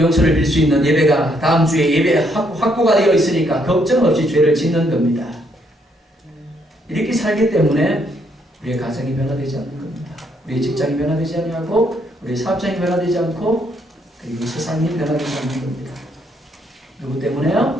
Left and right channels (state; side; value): normal; both; correlation 0.72